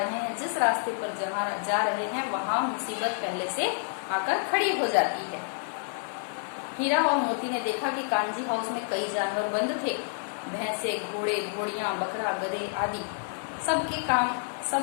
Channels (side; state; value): right; silent; 59 dB below the other